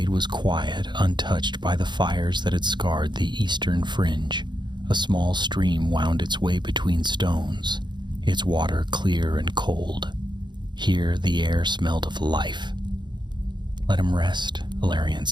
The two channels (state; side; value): late; left; 0.22 ms